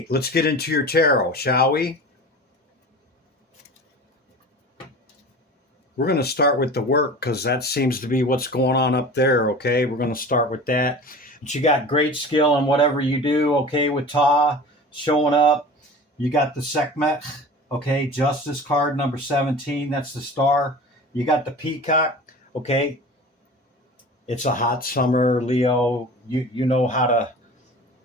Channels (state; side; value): normal; both; correlation 0.37